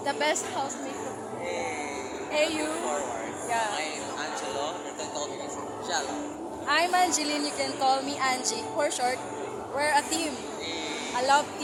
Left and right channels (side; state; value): both; identical; correlation 1.00